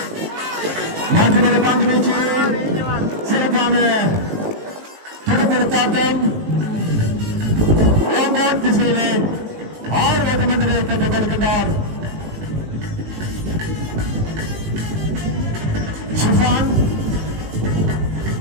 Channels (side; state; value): left; late; 19 ms